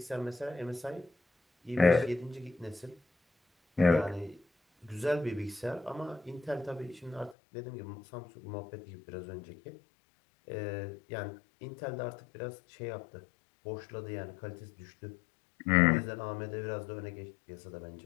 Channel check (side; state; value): right; drops out; at 7.4 s